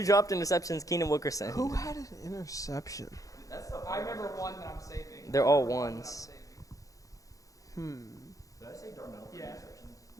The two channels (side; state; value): right; late; 0.16 ms